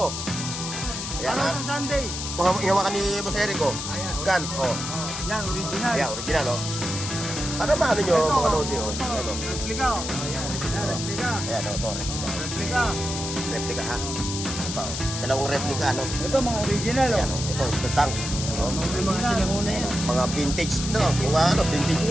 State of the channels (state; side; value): noise; left; hiss, 5 dB below the sound